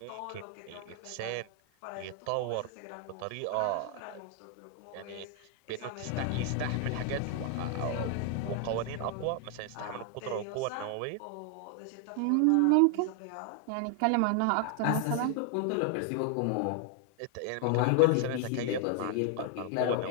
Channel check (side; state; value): both; different; correlation 0.00